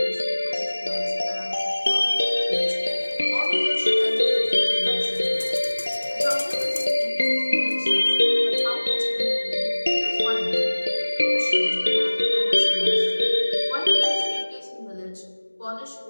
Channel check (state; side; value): inverted; both; correlation -1.00